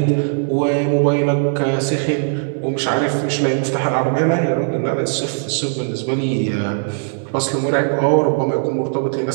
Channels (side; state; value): left; silent; digital silence